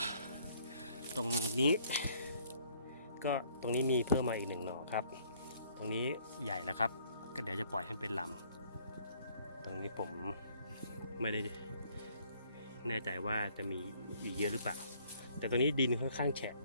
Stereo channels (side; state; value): both; inverted; correlation -0.62